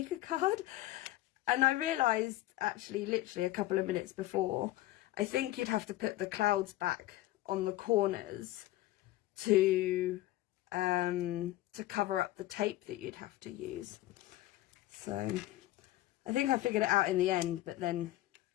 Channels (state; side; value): quieter; right; 16.2 dB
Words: card. And I realised, actually, literally a couple of minutes before, I think you'd have to put the clouds back on the corners to cover up the tape that you'd have to use. So I think I figured it out in the end, but then